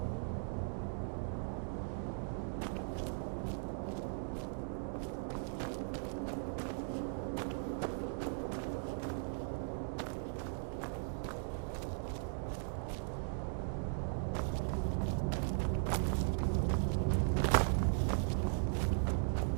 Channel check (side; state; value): left; silent; digital silence